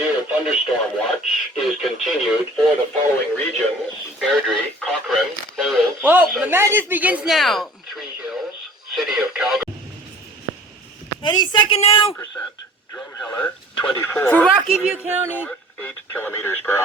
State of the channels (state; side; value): normal; both; correlation 0.48